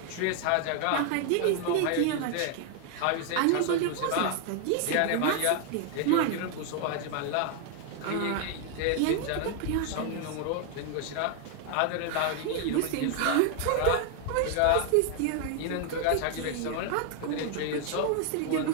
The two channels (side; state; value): both; different; correlation 0.00